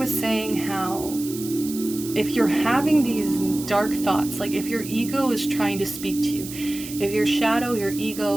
saying how if you're having these dark thoughts, like if your ego is trying to speak to you, if your shadow, your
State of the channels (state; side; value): noise; right; hiss, 12 dB below the sound